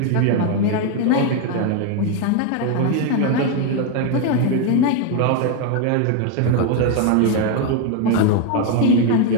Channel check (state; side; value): different; both; correlation 0.01